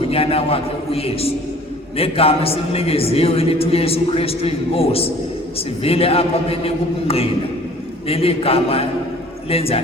wakhe uYesu. Negama esilinikezwe elithi uYesu Kristu inkosi sivile apha benika ubungqina, leli gama lenza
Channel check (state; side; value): normal; both; correlation 0.50